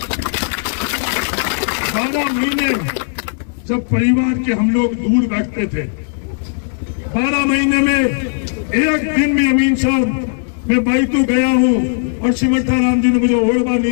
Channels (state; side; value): silent; right; digital silence